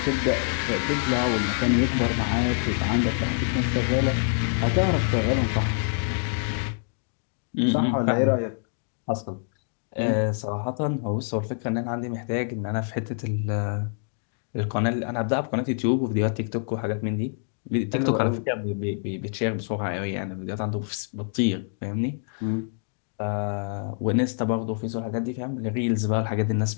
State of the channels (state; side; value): silent; right; digital silence